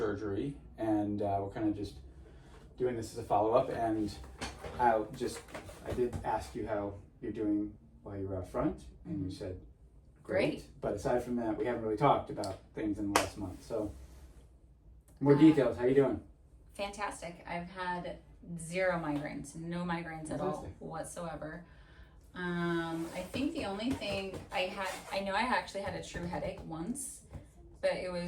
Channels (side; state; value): both; identical; correlation 1.00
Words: and we're kind of just doing this as a follow-up. And I did ask you how you're doing while you were out front, and you said great. But aside from that, we haven't really talked about things in the last month. So more details. How you doing? Fantastic. I've had 0 migraines, no migraines at all whatsoever. I think the only thing I know I actually had a true headache once, but it